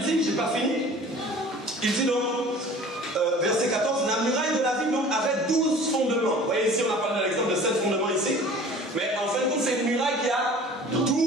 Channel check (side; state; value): both; normal; correlation 0.45